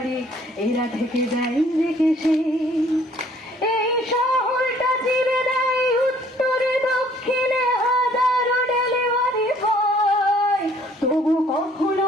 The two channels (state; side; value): normal; both; correlation 0.59